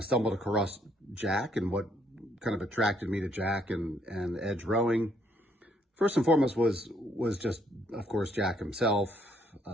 stumbled across Jack, and what kind of attracted me to Jack and edge rowing, first and foremost, was just, of course, Jack himself,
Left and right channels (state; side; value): normal; both; correlation 0.69